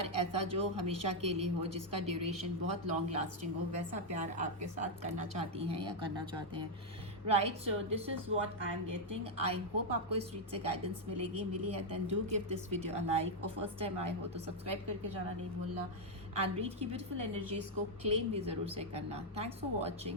ऐसा जो हमेशा के लिए हो, जिसका ड्यूरेशन बहुत लॉन्ग लास्टिंग हो, वैसा प्यार आपके साथ करना चाहती हैं या करना चाहते हैं। Right, so this is what I am getting. I hope आपको इस रीड से गाइडेंस मिली है, then do give this video a like, और फर्स्ट टाइम आए हो तो सब्सक्राइब करके जाना नहीं भूलना, एंड रीड की ब्यूटीफुल एनर्जीज को क्लेम भी ज़रूर से करना। Thanks for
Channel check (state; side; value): normal; both; correlation -0.01